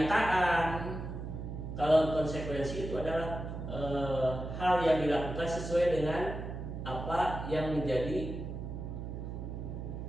Kalau konsekuensi itu adalah hal yang dilakukan sesuai dengan apa yang menjadi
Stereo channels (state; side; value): noise; right; hum, 7 dB below the sound